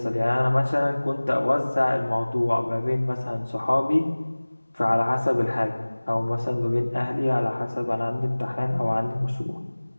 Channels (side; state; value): both; inverted; correlation -1.00